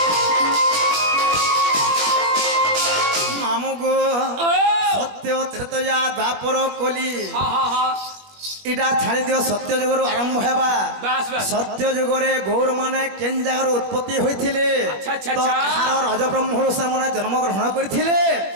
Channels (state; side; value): late; left; 21 ms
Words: ত্রেতয়া দ্বাপর কলি এটা ছাড়ি দিও সত্য যুগর আরম্ভ হেবা সত্য যুগরে গৌর মানে কেন জায়গার উৎপত্তি হয়েছিলে তো কাহার রজ ব্রহ্মর মানে জন্মগ্রহণ করেছিলে